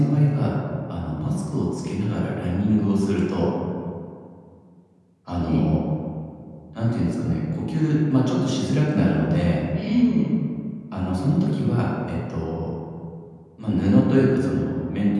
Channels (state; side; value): identical; both; correlation 1.00